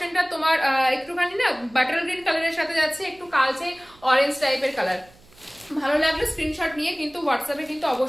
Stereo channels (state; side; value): noise; right; hum, 27 dB below the sound